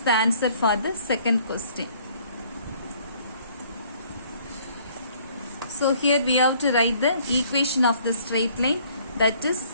the answer for the second question. So here we have to write the equation of the straight line, that is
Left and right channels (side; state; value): both; inverted; correlation -0.59